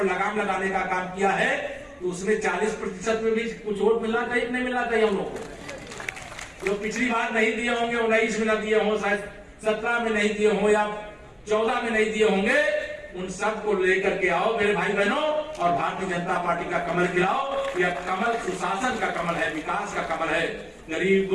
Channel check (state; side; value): identical; both; correlation 1.00